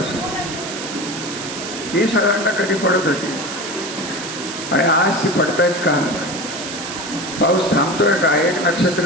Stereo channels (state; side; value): noise; right; hiss, 8 dB below the sound